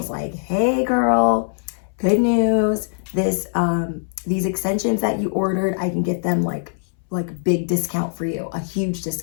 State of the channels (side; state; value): right; silent; 65 dB below the other